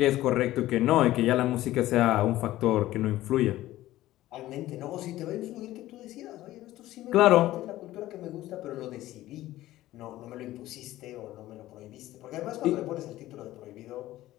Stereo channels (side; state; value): right; quieter; 15.5 dB